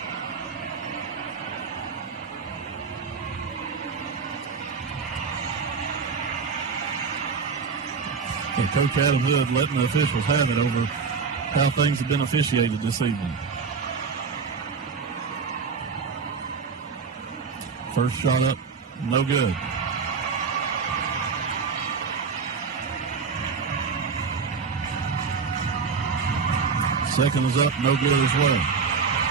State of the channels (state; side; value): quieter; left; 5.3 dB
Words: And Coach Adam Hood letting the officials have it over how things have been officiated this evening. First shot up, no good. Second is up, no good as well.